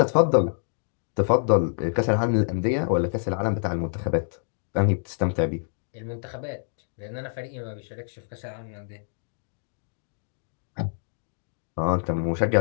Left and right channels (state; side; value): silent; right; digital silence